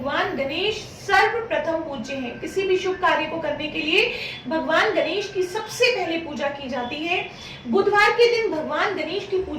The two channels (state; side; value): identical; both; correlation 1.00